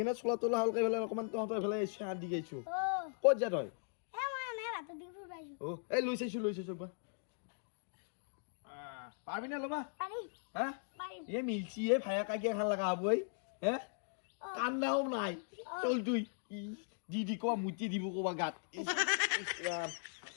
চোলা তোলা হালকাই পেলাই অকণমান তহঁতৰ এইফালে চাহ দি গৈছো ক'ত যা তই অ এই লৈ চাইছো বা পাৰবি না ল'বা হা এই মিলছি এই ভায়া কাকিয়া খান লগা হব এই হে কান্দাও নাই চল তুই দি কবা মুটি দিব কবা গাত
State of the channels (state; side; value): silent; right; digital silence